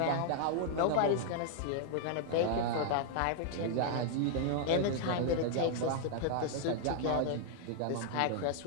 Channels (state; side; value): different; both; correlation 0.00